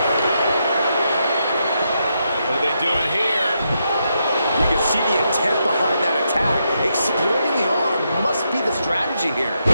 What are they doing here? You can see the intent behind that attack. Exploiting the arm must be the strategy here.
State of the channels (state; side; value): inverted; both; correlation -0.82